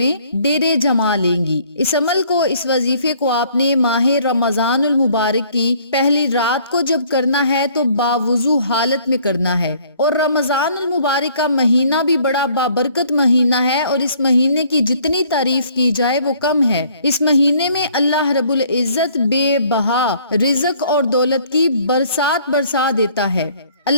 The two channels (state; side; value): inverted; both; correlation -0.59